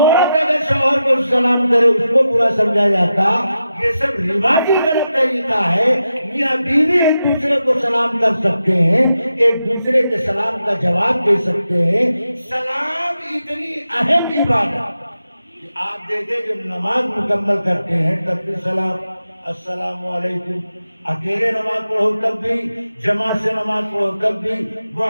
اگر شوہر کو سلام کرے اس کو برا سمجھا جاتا۔ یہ سب رواجی غلط طریقہ ہے۔ میاں بیوی ایک دوسرے کو سلام کر سکتے ہیں، ایک دوسرے کے سلام کا جواب دے سکتے ہیں۔ سلام اتنی اہم عبادت کہ آپ دیکھیں جب نماز مکمل کرتے ہیں تب بھی سلام، السلام علیکم، اکیلے نماز پڑھو تب بھی، جماعت سے نماز پڑھو تب بھی،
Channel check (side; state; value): both; inverted; correlation -0.89